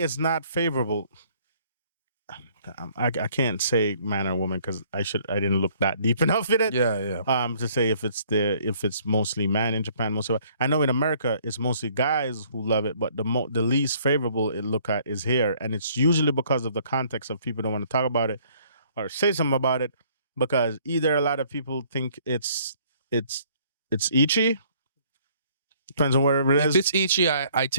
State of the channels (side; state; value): both; inverted; correlation -0.60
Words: not favorable. I can't say man or woman because I didn't look that deep enough in it. Yeah. To say if it's mostly man in Japan, mostly. I know in America it's mostly guys who love it, but the least favorable it look at is here, and it's usually because of the context of people don't want to talk about it or say something about it because either a lot of people think it's ichy. Depends on where it is. If it's ichy, I